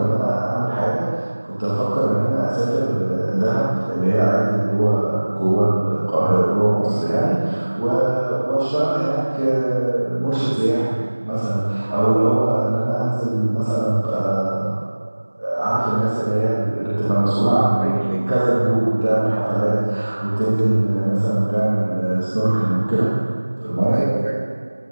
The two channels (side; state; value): both; inverted; correlation -1.00